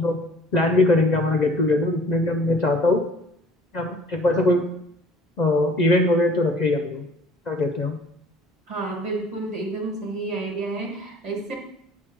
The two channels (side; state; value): both; normal; correlation 0.52